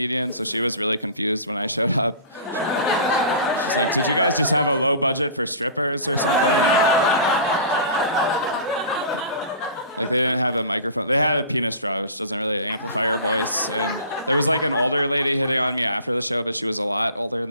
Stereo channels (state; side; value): inverted; both; correlation -0.40